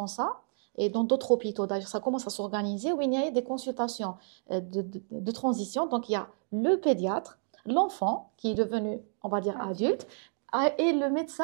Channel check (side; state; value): left; silent; 55 dB below the other